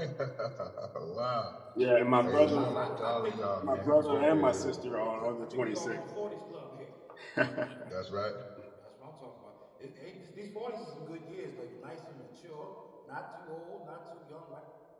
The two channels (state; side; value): identical; both; correlation 1.00